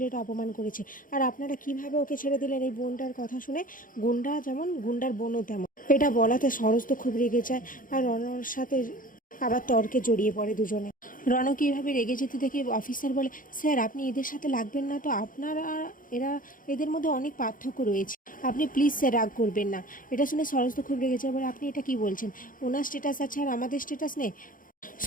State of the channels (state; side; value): late; right; 0.40 ms